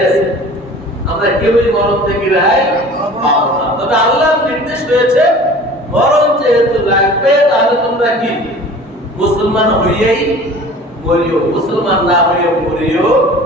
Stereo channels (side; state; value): both; normal; correlation 0.43